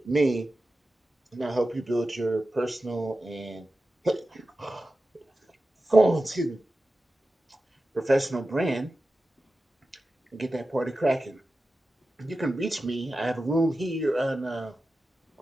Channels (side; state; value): both; normal; correlation 0.93